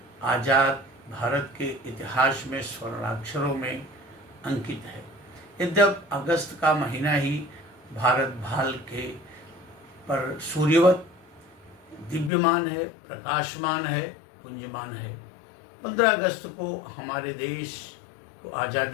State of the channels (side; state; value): right; drops out; at 12.3 s